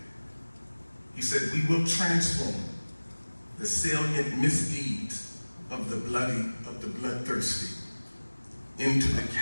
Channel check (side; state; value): both; inverted; correlation -1.00